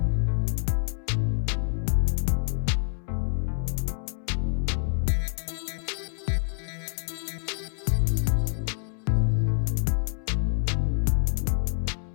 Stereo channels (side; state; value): right; silent; 60 dB below the other